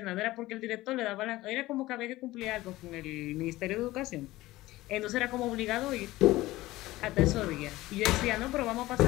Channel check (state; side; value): quieter; right; 17.8 dB